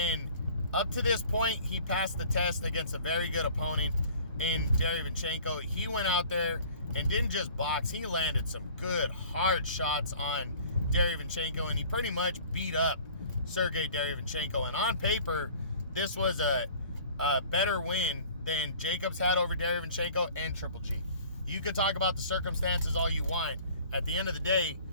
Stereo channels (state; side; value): inverted; both; correlation -0.48